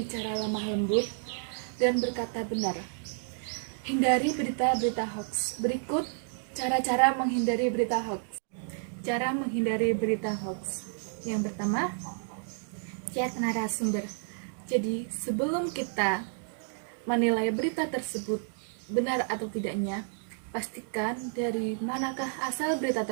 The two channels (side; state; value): left; silent; digital silence